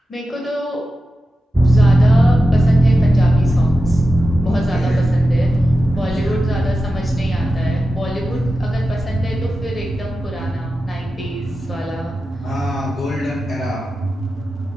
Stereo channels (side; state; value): both; normal; correlation 0.92